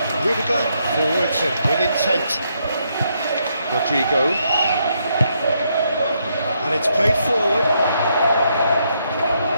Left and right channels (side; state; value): both; inverted; correlation -0.77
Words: Rudiger, forwards and with intent. Rodrigo, and it's played forward.